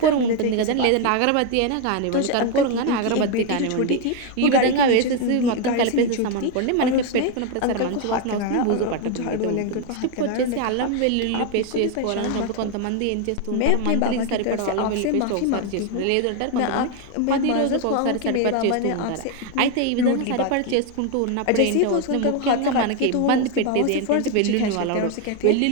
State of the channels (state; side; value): different; both; correlation 0.01